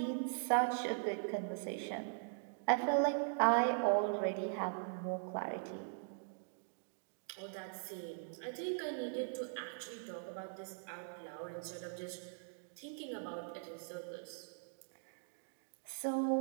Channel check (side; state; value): left; silent; digital silence